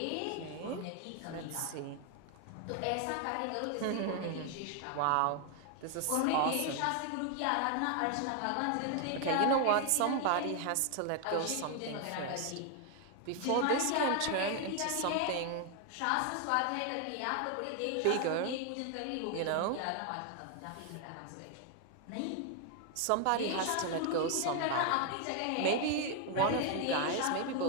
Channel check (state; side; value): different; both; correlation 0.00